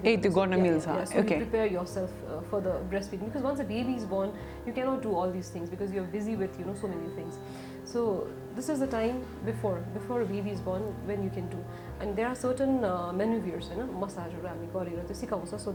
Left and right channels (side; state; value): both; identical; correlation 1.00